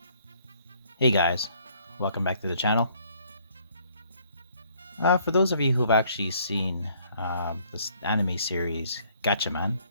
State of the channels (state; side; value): inverted; both; correlation -0.63